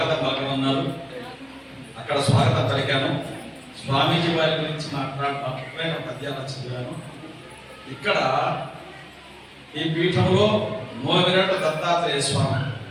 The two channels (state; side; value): identical; both; correlation 1.00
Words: పలకమన్నారు. అక్కడ స్వాగతం పలికాను. స్వామీజీ వారి గురించి మాట్లాడిన పద్యాలు చదివాను. ఇక్కడ ఈ పీఠంలో మూలవిరాట దత్తాత్రేయ స్వామి